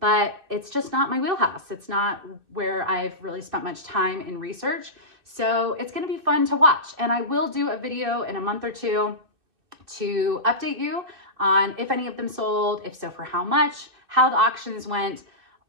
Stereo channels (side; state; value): left; late; 2.6 ms